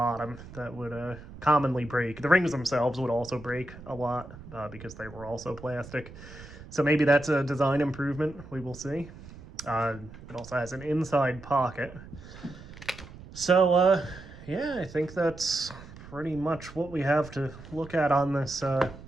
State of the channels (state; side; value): noise; right; rumble, 16 dB below the sound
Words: that would commonly break. The rings themselves would also break a lot, because they were also plastic. So maybe that's a design improvement, we will see. It also has an inside pocket. So, yeah, I think that's pretty much what we have to look at on this